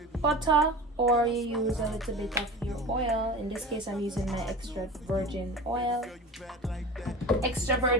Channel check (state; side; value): normal; both; correlation 0.33